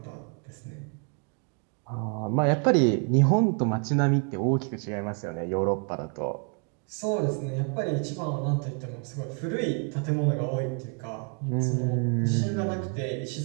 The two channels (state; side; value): quieter; left; 37.3 dB